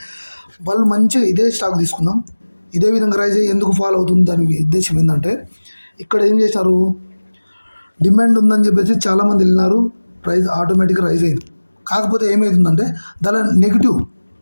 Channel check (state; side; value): inverted; both; correlation -1.00